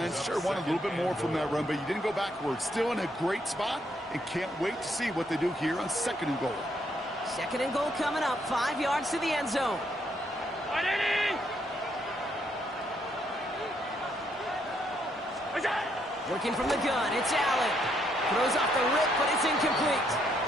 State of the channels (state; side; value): normal; both; correlation 0.73